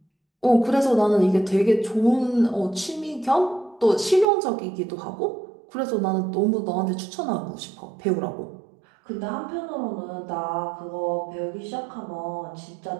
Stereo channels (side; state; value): left; drops out; at 4.2 s